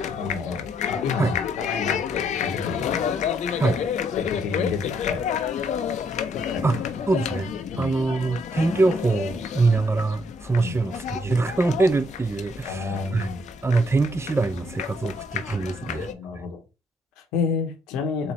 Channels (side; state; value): both; normal; correlation 0.70